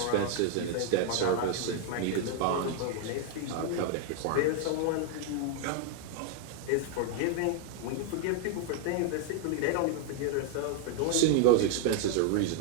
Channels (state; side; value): different; both; correlation 0.00